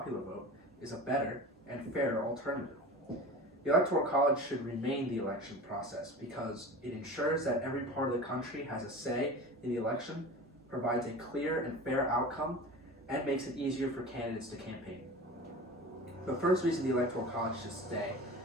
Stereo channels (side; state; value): both; normal; correlation 0.34